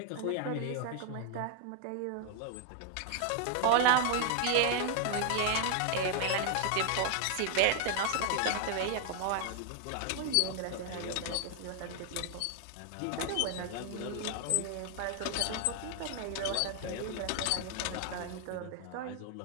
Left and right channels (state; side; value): different; both; correlation 0.00